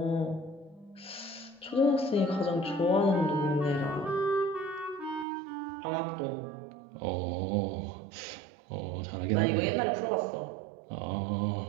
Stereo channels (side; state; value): left; drops out; at 5.2 s